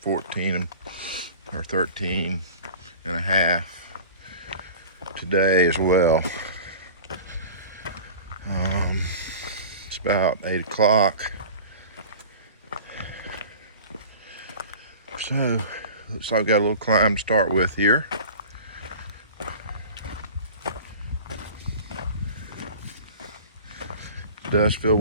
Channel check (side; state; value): both; inverted; correlation -0.39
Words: or 13 and a half today as well. It's about 8 o'clock. So, looks like I've got a little climb to start with here. It does feel